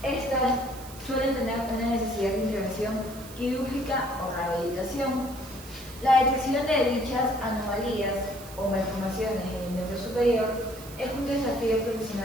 Estas suelen tener una necesidad de intervención quirúrgica o rehabilitación. La detección de dichas anomalías o malformaciones en el miembro superior es un desafío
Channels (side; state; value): right; noise; hiss, 17 dB below the sound